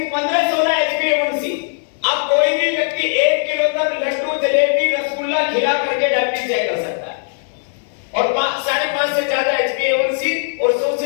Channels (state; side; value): silent; right; digital silence